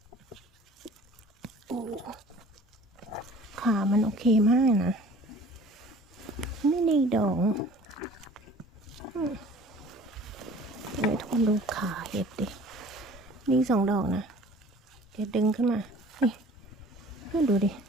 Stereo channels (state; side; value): normal; both; correlation 0.48